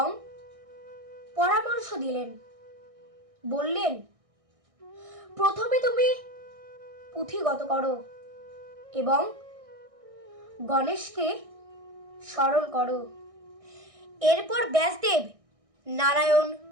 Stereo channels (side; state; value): left; late; 1.6 ms